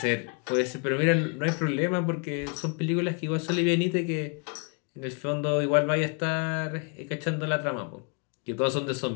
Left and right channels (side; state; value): right; quieter; 36.2 dB